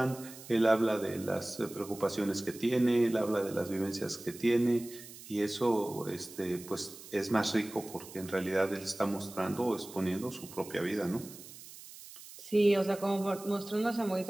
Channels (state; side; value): noise; right; hiss, 16 dB below the sound